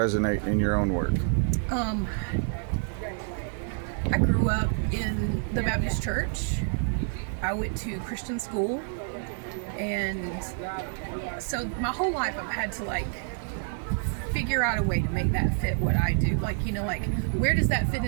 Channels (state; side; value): silent; left; 59 dB below the other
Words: in your own work? I grew up in the Baptist church. I went to Christian school, and so my whole life I've had to figure out a way to make that fit what I do. Where does that fit